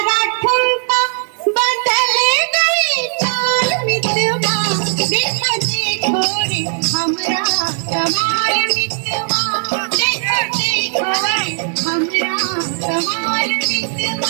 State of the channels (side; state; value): left; silent; digital silence